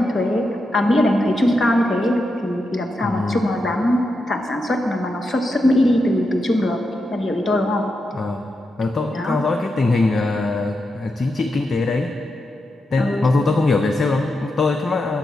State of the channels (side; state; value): both; normal; correlation 0.86